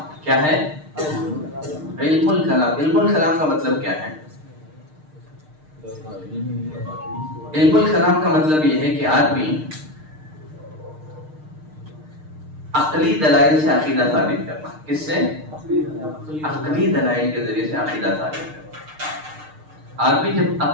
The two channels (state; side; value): late; left; 6.6 ms